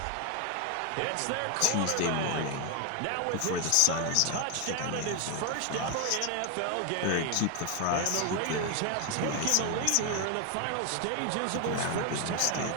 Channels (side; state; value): both; different; correlation 0.01